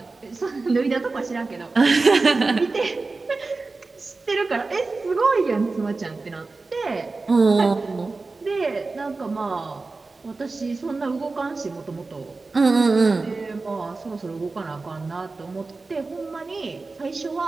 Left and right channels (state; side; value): quieter; left; 3.7 dB